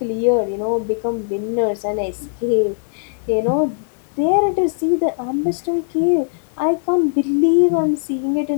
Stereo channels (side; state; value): right; silent; digital silence